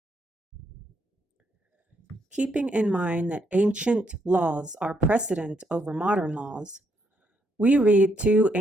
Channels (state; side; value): normal; both; correlation 0.75